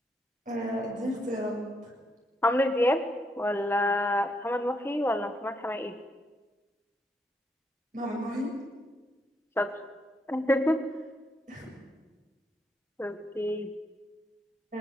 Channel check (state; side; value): normal; both; correlation 0.76